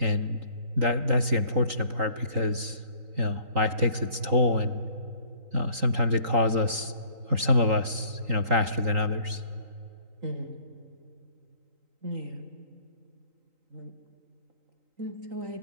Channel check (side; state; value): left; late; 3.8 ms